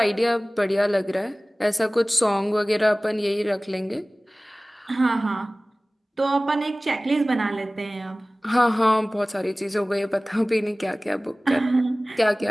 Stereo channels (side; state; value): both; normal; correlation 0.98